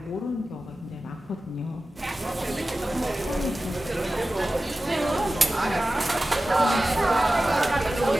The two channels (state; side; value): normal; both; correlation 0.95